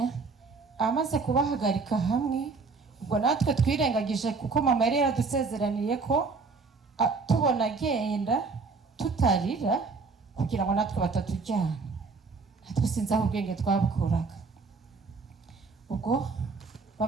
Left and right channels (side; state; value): left; quieter; 4.4 dB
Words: amaze kubahagarika hamwe, ubwo natwe twirengagije kuko mama yari yaradusezeraniye ko tubona agenda tutarira kugira ngo natwe batatujyana. Natwe sinzi aho ubwenge twabukuraga. Ubwo